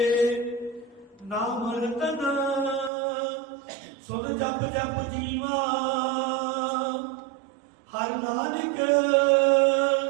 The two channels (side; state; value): left; drops out; at 2.9 s